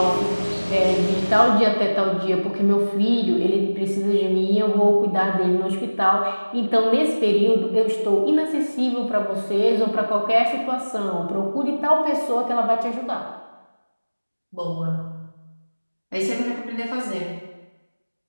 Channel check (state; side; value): inverted; both; correlation -1.00